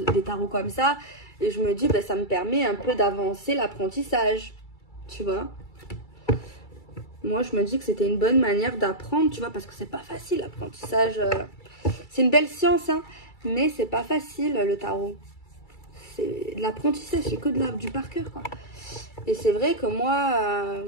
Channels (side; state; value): right; late; 2.3 ms